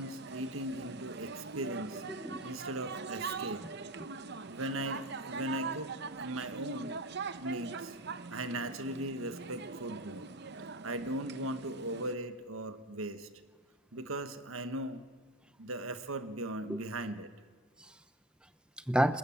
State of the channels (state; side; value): normal; both; correlation 0.29